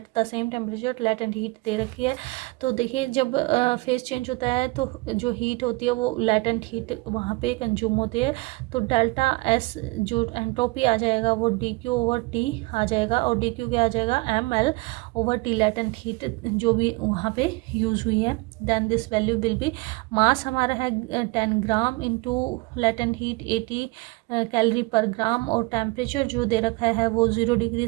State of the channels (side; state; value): left; quieter; 25.0 dB